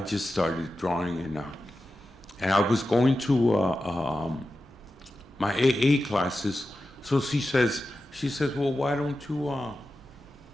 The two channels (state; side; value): normal; both; correlation 0.92